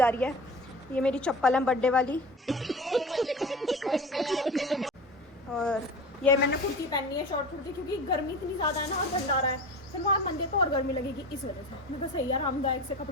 रही है। ये मेरी चप्पल है बर्थडे वाली। और ये मैंने कुर्ती पहननी है, शॉर्ट कुर्ती, क्योंकि गर्मी इतनी ज़्यादा है ना और भंडारा है, फिर वहाँ मंदिर तो और गर्मी लगेगी, इस वजह से मैं बस सही आरामदायक से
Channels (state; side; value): normal; both; correlation 0.33